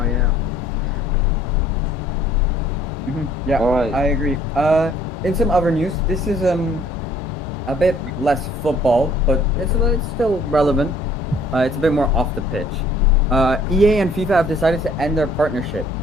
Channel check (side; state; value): both; normal; correlation 0.58